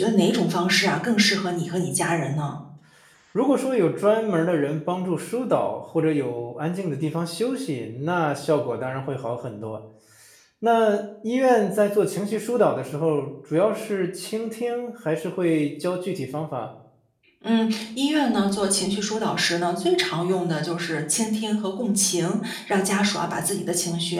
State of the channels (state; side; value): identical; both; correlation 1.00